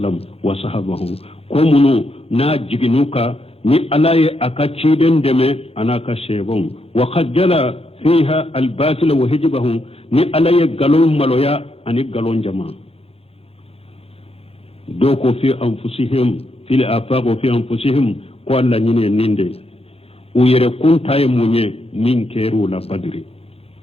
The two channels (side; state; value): right; late; 0.29 ms